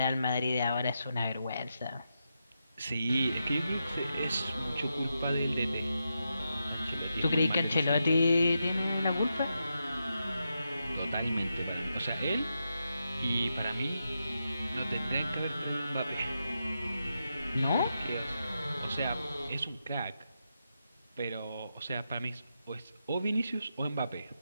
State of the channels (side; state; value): both; inverted; correlation -0.86